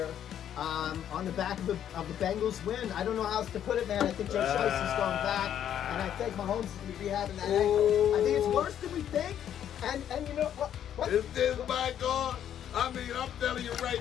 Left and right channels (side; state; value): right; quieter; 10.0 dB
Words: on the back of the Bengals win. I don't know how else to put it, man. I think Joe Shiesty's going back, and I think Mahomes is going to be having that ankle. I think it's worse than we think. And you know what? This my God. I mean, I'm telling you